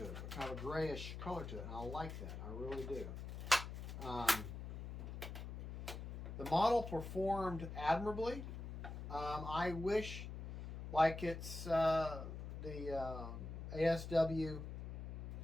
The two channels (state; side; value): noise; left; hum, 7 dB below the sound